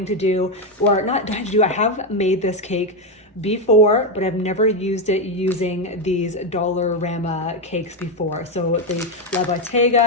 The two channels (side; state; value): both; normal; correlation 0.07